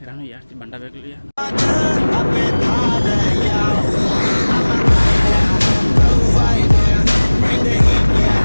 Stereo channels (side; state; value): both; inverted; correlation -1.00